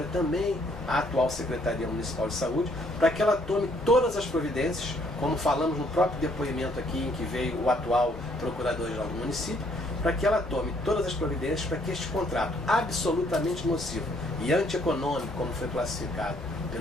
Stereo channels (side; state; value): both; normal; correlation 0.66